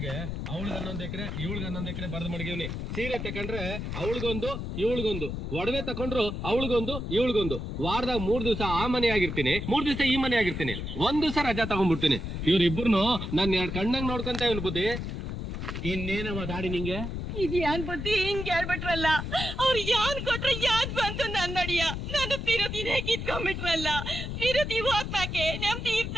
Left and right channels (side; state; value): left; noise; rumble, 5 dB below the sound